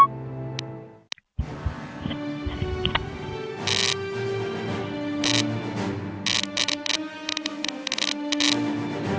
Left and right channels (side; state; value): both; identical; correlation 1.00